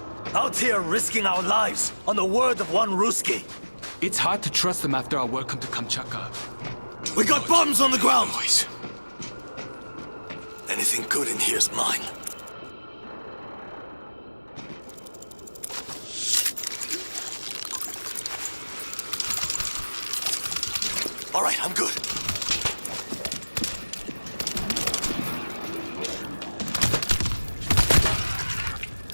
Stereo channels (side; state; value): both; inverted; correlation -1.00